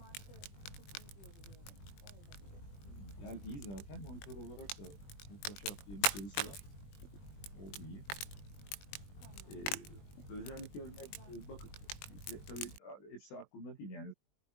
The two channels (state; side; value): late; right; 20 ms